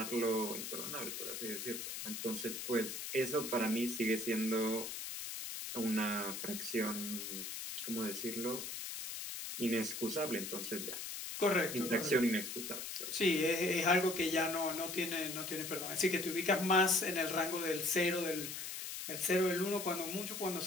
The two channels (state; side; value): noise; left; hiss, 6 dB below the sound